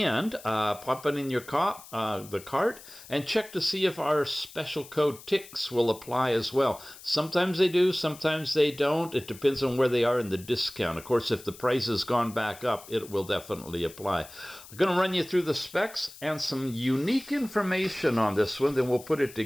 pop it in your the cart and check to see if our special code TICS will apply as well. Sometimes they do, sometimes they don't. It depends on where they are in the discount. Of course, if the price has gone back up, it will definitely apply. I'm going to run you through the specs and some unique information on this one, then we'll put it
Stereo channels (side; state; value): left; noise; hiss, 18 dB below the sound